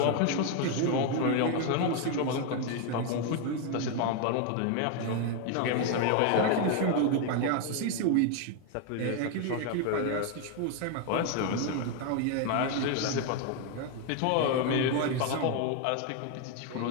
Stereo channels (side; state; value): both; different; correlation 0.01